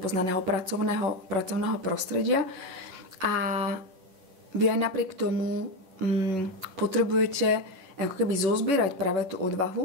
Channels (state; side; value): late; left; 11 ms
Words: pracovného prostredia. A vy aj napriek tomu potrebujete ako keby zozbierať práve tú